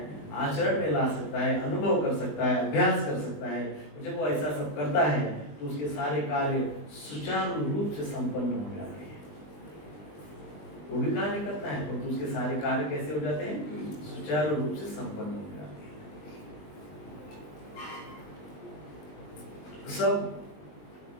आचरण में ला सकता है, अनुभव कर सकता है, अभ्यास कर सकता है। जब वो ऐसा सब करता है तो उसके सारे कार्य सुचारू रूप से संपन्न हो जाते हैं। वो भी कार्य करता है तो उसके सारे कार्य कैसे हो जाते हैं? सुचारू रूप से संपन्न हो जाते हैं। सब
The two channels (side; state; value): right; late; 20 ms